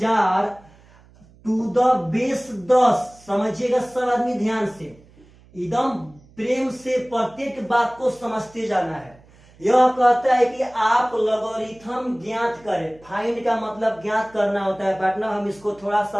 to the base 10। समझिएगा सब आदमी ध्यान से, एकदम प्रेम से प्रत्येक बात को समझते जाना है। यह कहता है कि आप लॉगरिथम ज्ञात करें। फाइंड का मतलब ज्ञात करना होता है पार्टनर। हम इसको थोड़ा सा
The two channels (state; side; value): noise; right; hum, 27 dB below the sound